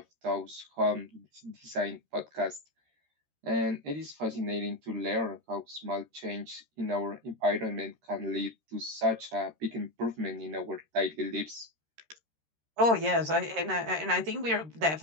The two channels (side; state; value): left; late; 13 ms